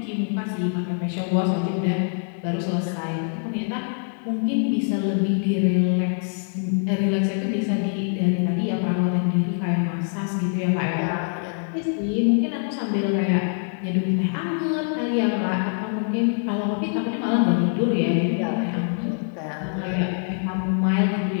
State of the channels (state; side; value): silent; right; 63 dB below the other